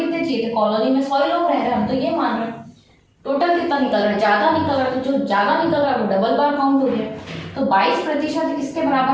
चाहिए थे, कॉलोनी में 100 लोग रह रहे हैं, हम तो ये मान रहे हैं। टोटल कितना निकल रहा है, ज्यादा निकल रहा है, तो जो ज्यादा निकल रहा है वो डबल बार काउंट हो गया। तो 22% किसके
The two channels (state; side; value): identical; both; correlation 1.00